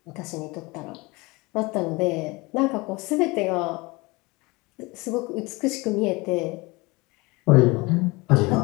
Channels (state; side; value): quieter; right; 24.5 dB